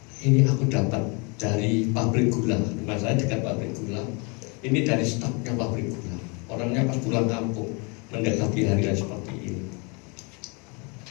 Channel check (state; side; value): quieter; right; 31.4 dB